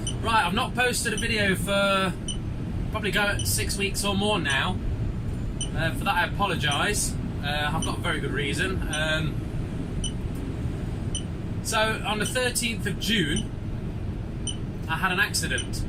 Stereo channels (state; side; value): identical; both; correlation 1.00